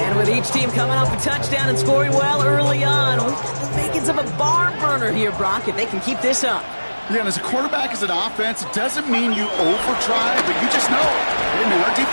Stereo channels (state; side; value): inverted; both; correlation -1.00